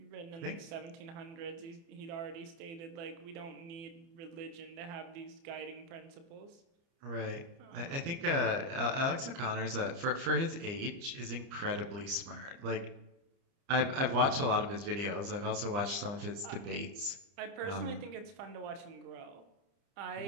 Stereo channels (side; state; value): left; late; 30 ms